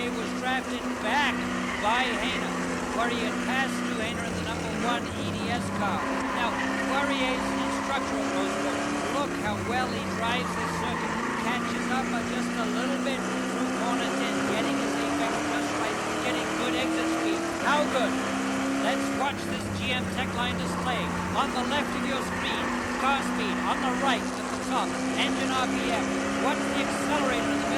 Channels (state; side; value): identical; both; correlation 1.00